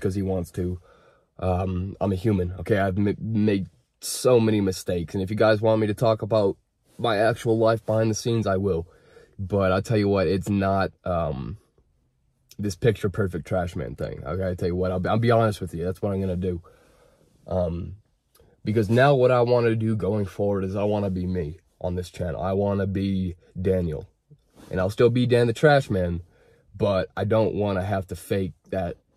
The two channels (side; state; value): both; identical; correlation 1.00